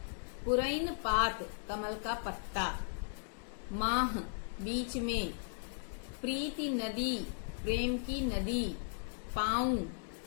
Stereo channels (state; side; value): silent; right; digital silence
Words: पुरैन पात कमल का पत्ता, माह बीच में, प्रीति नदी प्रेम की नदी, पाँव